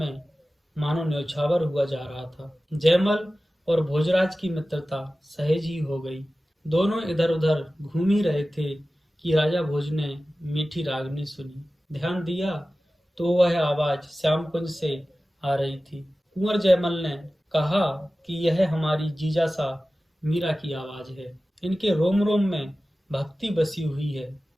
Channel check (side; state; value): both; normal; correlation 0.96